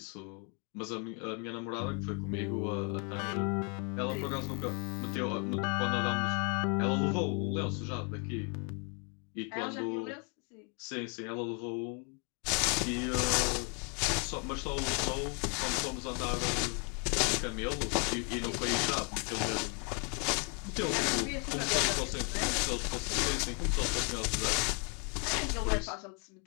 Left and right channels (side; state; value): right; quieter; 36.4 dB